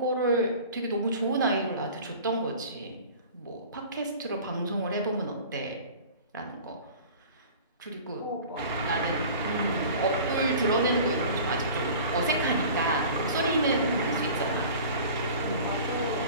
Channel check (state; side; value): inverted; both; correlation -0.42